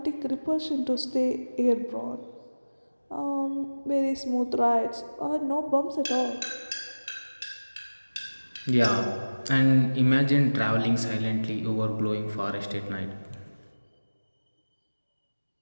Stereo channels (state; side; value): inverted; both; correlation -1.00